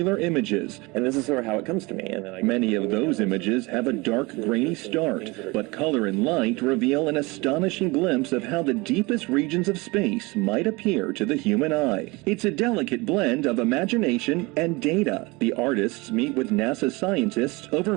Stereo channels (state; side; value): quieter; left; 24.6 dB